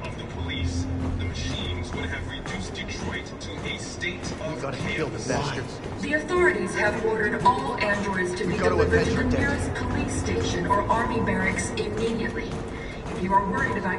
of the police, the machines would have reduced Detroit to a state of chaos. The authorities have ordered all androids to be delivered to the nearest police station or army barracks immediately. If you are worried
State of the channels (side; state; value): both; identical; correlation 1.00